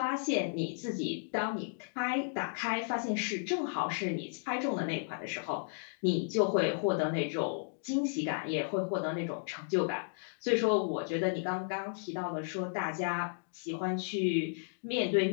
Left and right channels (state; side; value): silent; right; digital silence